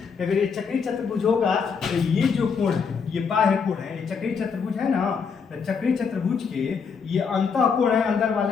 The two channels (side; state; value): right; quieter; 5.9 dB